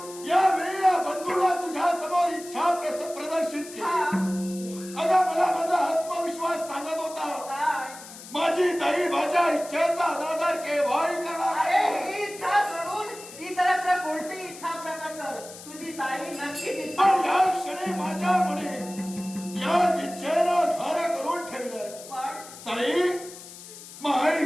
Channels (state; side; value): noise; left; hiss, 15 dB below the sound